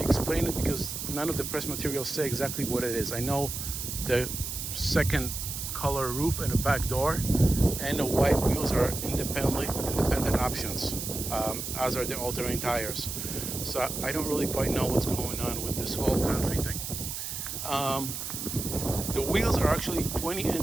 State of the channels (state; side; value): noise; right; hiss, 5 dB below the sound